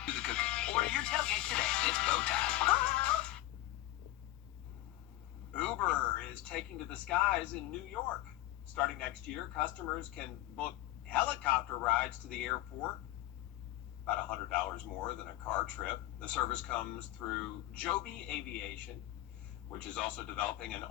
do the cooking. Order your tailgate today. It's bow time. Uber is taking to the skies in New York. Starting next year, customers can book helicopter rides to the airport, about $100 more than a car trip. The service comes through Joby Aviation, which is also developing an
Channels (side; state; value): right; quieter; 15.9 dB